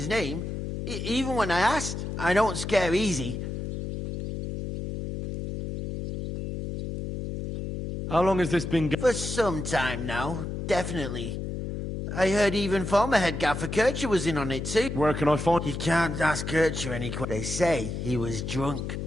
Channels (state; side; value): noise; left; hum, 5 dB below the sound